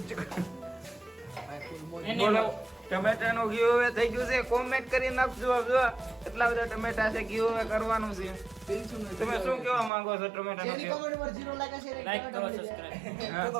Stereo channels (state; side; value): drops out; left; at 9.9 s